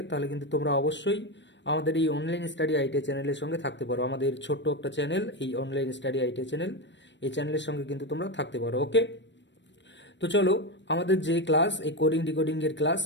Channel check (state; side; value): late; right; 0.53 ms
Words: তাহলে কিন্তু তোমরা অবশ্যই আমাদের এই অনলাইন স্টাডি আইটিআই চ্যানেলের সঙ্গে থাকতে পারো। আমাদের ছোট্ট একটা চ্যানেল, এই অনলাইন স্টাডি আইটিআই চ্যানেল, এই চ্যানেলের সঙ্গে কিন্তু তোমরা থাকতে পারো। ওকে, তো চলো আমাদের যে ক্লাস, এই কোডিং ডিকোডিং এর ক্লাস